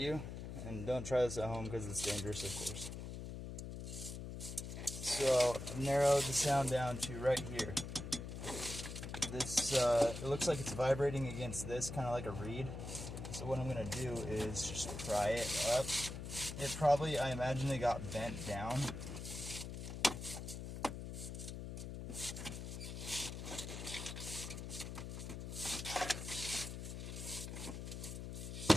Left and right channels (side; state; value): left; noise; hum, 7 dB below the sound